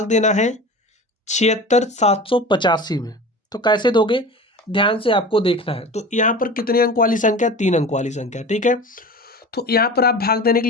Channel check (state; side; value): normal; both; correlation 0.34